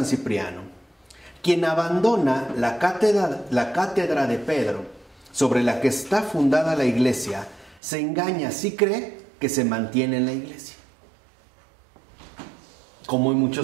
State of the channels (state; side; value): drops out; left; at 7.8 s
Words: Cipriano: quien abandona la cátedra de Pedro, sobre la que está fundada la iglesia, se engaña si cree que se mantiene en la iglesia, como